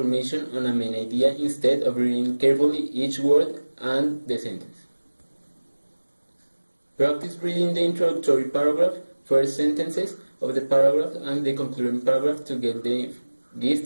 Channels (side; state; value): both; inverted; correlation -1.00